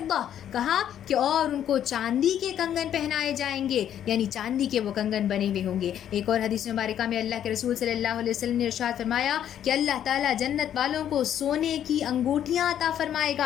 کہا کہ اور ان کو چاندی کے کنگن پہنائے جائیں گے، یعنی چاندی کے وہ کنگن بنے ہوئے ہوں گے. ایک اور حدیث مبارکہ میں اللہ کے رسول صلی اللہ علیہ وسلم نے ارشاد فرمایا کہ اللہ تعالیٰ جنت والوں کو سونے کی انگوٹھیاں عطا فرمائے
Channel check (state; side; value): quieter; right; 10.2 dB